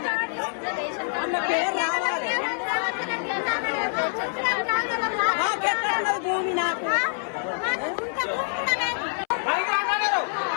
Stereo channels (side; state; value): right; silent; 61 dB below the other